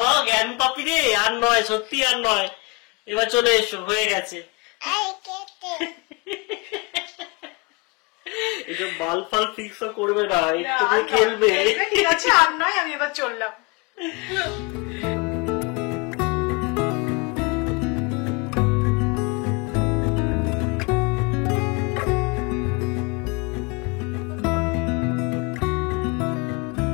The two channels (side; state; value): right; quieter; 28.6 dB